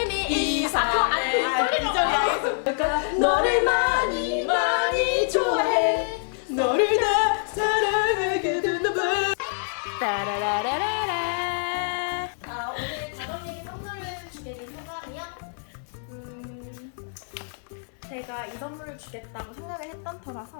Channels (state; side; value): silent; right; digital silence